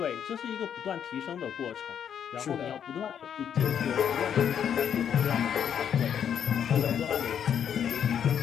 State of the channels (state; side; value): quieter; right; 8.6 dB